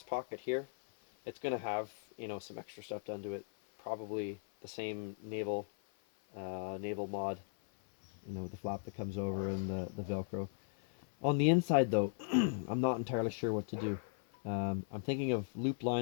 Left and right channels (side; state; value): right; silent; 53 dB below the other